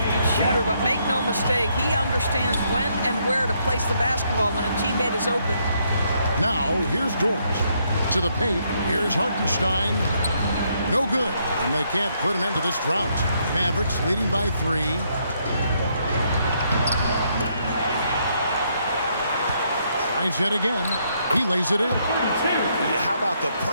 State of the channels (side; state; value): both; inverted; correlation -0.73